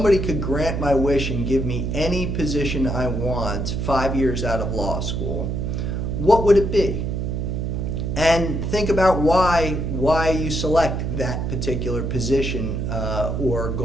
could grant my wish and give me any position I want 5 years out of law school, what would it be? And think about why you select that particular position or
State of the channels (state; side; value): noise; right; hum, 2 dB below the sound